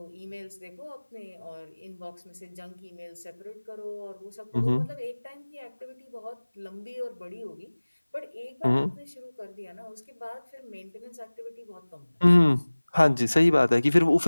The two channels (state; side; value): inverted; both; correlation -1.00